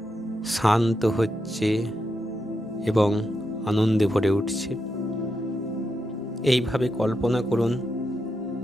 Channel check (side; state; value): both; normal; correlation 0.84